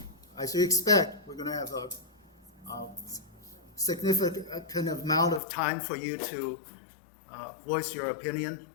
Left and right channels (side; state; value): right; drops out; at 5.4 s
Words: as you expect, we're going to have a significant amount of time for you to voice your opinion,